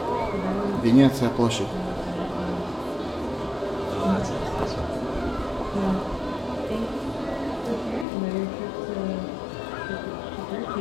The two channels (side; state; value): right; drops out; at 8.1 s